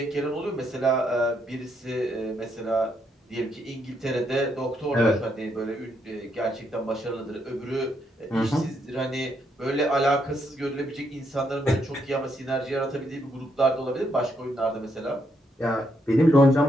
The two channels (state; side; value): normal; both; correlation 0.76